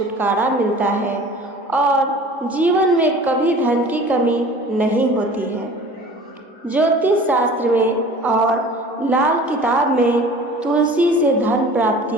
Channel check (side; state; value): both; normal; correlation 0.44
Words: मिलता है और जीवन में कभी धन की कमी नहीं होती है। ज्योतिष शास्त्र में और लाल किताब में तुलसी से धन